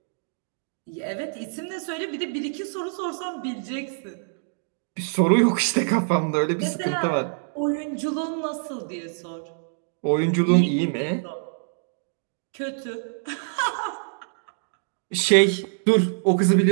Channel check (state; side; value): silent; left; digital silence